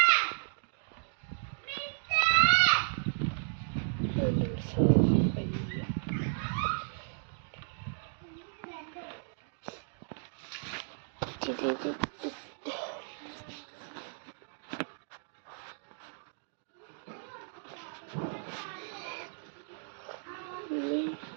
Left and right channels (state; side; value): silent; left; digital silence